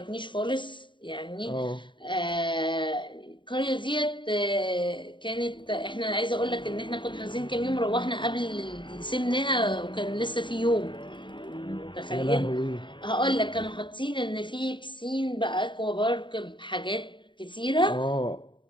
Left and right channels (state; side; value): late; right; 0.23 ms